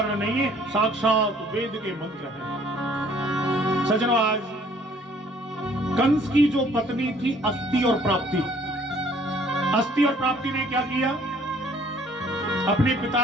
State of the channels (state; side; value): normal; both; correlation 0.58